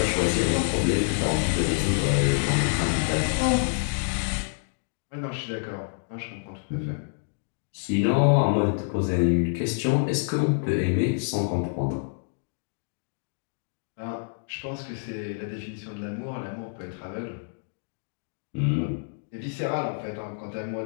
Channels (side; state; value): right; silent; digital silence